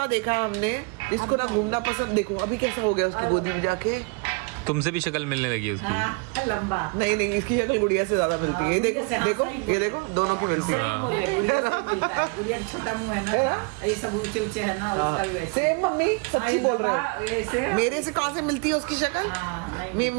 देखा हमने, इसको ना घूमना पसंद। देखो अभी कैसा हो गया उसकी गोदी में जाके। तुमसे भी शक्ल मिलने लगी है उसकी। हाँ, लंबा नहीं नहीं, इसकी शक्ल गुड़िया से ज्यादा मिलती है। ये देखो देखो ये देखो, दोनों की मिलती है। गुड़िया का छोटा मुंह है ना, ये सब ऊंचे ऊंचे है ना, उसका भी वैसे। सेम मम्मी सच्ची बोल रहे हैं। ऐसे मेरे से कहाँ से मिलती है उसकी शक्ल?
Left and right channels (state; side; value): quieter; left; 32.6 dB